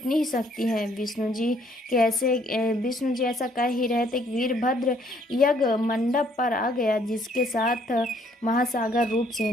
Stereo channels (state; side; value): normal; both; correlation 0.65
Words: ही शक्ति है। विष्णु जी ऐसा कह ही रहे थे कि वीरभद्र यज्ञ मंडप पर आ गया, जिसके साथ महासागर रूप